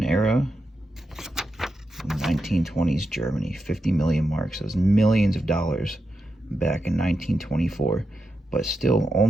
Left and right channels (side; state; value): both; normal; correlation 0.87